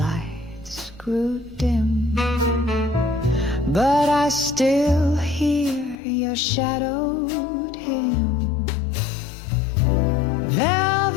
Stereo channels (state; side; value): drops out; right; at 6.0 s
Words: grew dim, but I still hear your shadowed hymn.